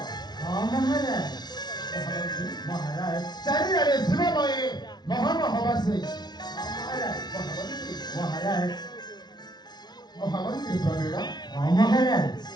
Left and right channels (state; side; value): late; right; 0.20 ms